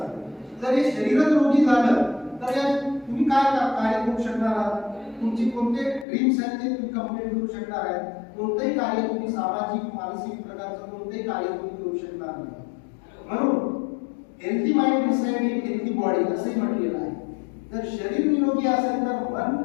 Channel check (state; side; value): drops out; right; at 6.1 s